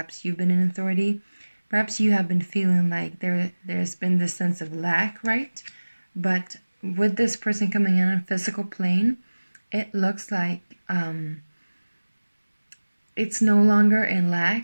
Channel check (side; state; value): both; inverted; correlation -1.00